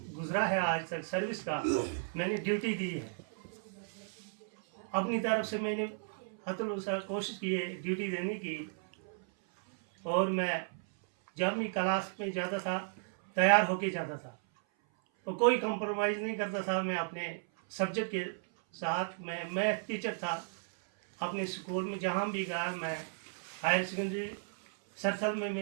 गुज़रा है आज तक सर्विस का, मैंने ड्यूटी दी है, अपनी तरफ से मैंने हतुल कोशिश की है ड्यूटी देने की, और मैं जब भी क्लास में जाता था तैयार होके जाता था और कोई कंप्रोमाइज़ नहीं करता था। मैं अपने सब्जेक्ट के साथ, मैं मैथ टीचर था अपने स्कूल में, जहाँ भी गया मैं हायर सेकेंडरी सरथल में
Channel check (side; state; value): left; silent; 55 dB below the other